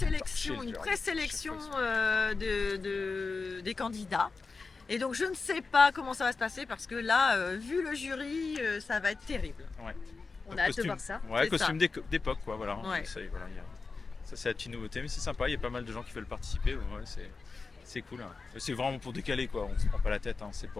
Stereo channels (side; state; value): right; quieter; 4.3 dB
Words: une présélection des candidats. Et donc je ne sais pas comment ça va se passer parce que là, vu le jury, ça va être terrible. On a hâte de voir ça. Ouais, C'est costume d'époque, quoi, voilà. Ouais. Ça, voilà, ça c'est la petite nouveauté, mais c'est sympa, il y a pas mal de gens qui veulent participer, ouais, c'est cool. Hein. C'est vraiment pour décaler, quoi, on se prend pas la tête, hein. C'est